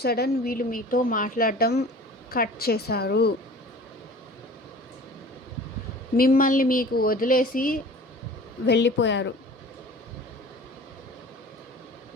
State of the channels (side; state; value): both; normal; correlation 0.43